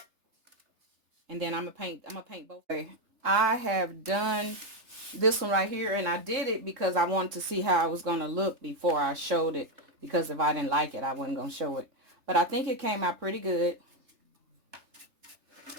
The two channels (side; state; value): left; late; 3.3 ms